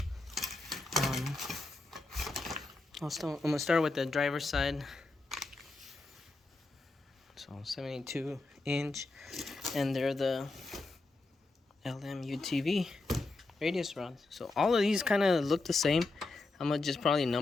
I'm gonna start with the driver's side. So 72-inch, and they're the LM UTV radius rods. So all of these kind of look the same. I'm gonna just probably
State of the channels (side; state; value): right; quieter; 3.2 dB